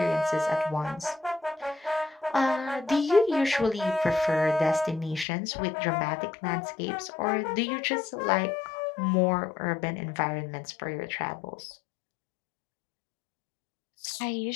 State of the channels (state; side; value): drops out; right; at 5.2 s